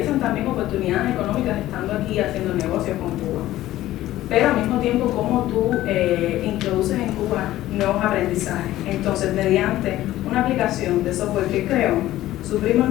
también oportunidades económicas estando aquí haciendo negocios con Cuba. Pero al mismo tiempo cómo tú introduces en Cuba nuevos aprendizajes. Entonces, mediante una aplicación de software que creó, su primo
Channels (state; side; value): quieter; right; 14.9 dB